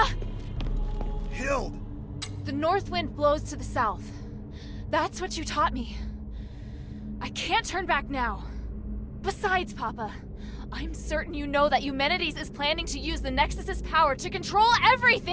Hild! The north wind blows to the south. That's what you taught me. I can't turn back now. Besides, Papa, I'm certain you know that Eumenides is planning to use the Nexus's power to control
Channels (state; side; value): identical; both; correlation 1.00